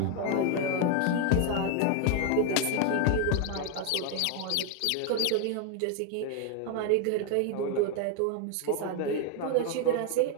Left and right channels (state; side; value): different; both; correlation 0.00